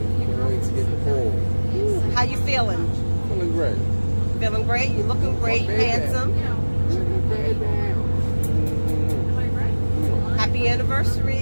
Can't wait to get in the pool. How you feeling? Feeling great. Feeling great? You're looking great, handsome. Happy anniversary.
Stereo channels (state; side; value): inverted; both; correlation -1.00